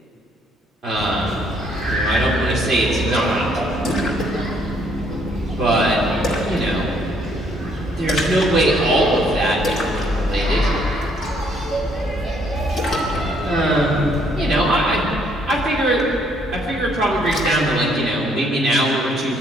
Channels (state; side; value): normal; both; correlation 0.67